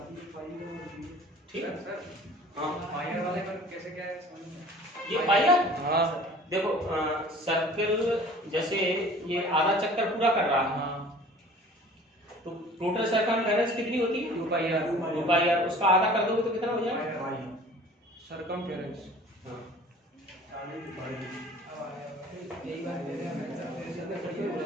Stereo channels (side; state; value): both; normal; correlation 0.47